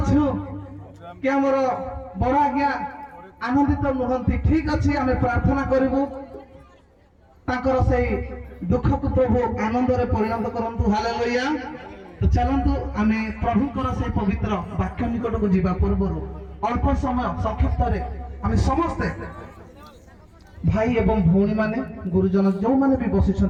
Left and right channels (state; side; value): identical; both; correlation 1.00